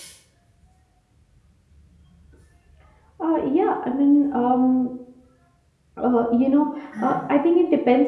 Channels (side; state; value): both; identical; correlation 1.00